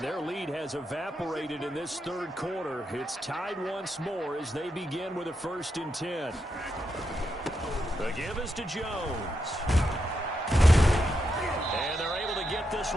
their lead has evaporated in this 3rd quarter. It's tied once more as they begin with a 1st and 10. The give is to Jones. And they're able to get this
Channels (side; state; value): both; normal; correlation 0.84